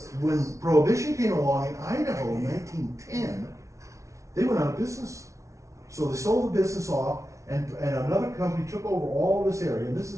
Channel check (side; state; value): left; late; 0.14 ms